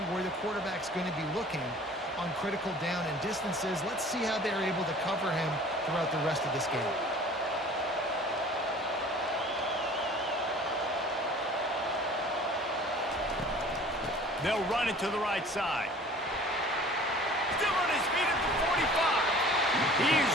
where the quarterback's going to be looking on critical down and distances. Let's see how they're able to cover him throughout the rest of this game. They'll run it to the right side. Still on his feet at the 45. He's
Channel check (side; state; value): both; normal; correlation 0.47